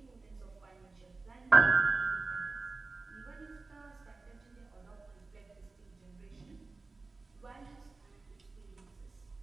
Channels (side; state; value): left; quieter; 3.7 dB